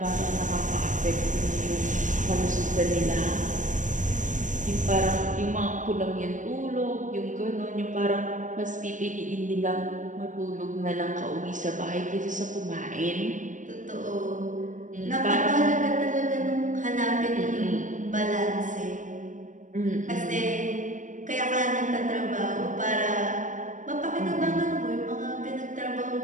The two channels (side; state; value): left; late; 0.37 ms